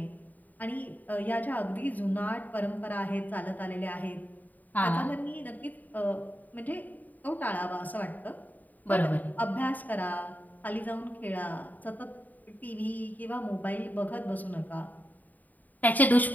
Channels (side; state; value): right; late; 0.083 ms